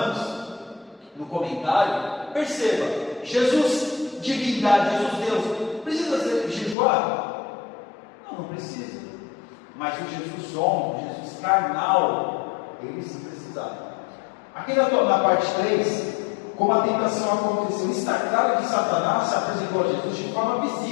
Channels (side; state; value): right; drops out; at 6.8 s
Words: no comentário, perceba, Jesus, divindade, Jesus Deus, precisa jejuar? Não precisa. Mas o Jesus homem, o Jesus carnal, ele sim precisava. Aqui na parte 3, como a tentação aconteceu, está claro que Satanás se apresentou a Jesus de forma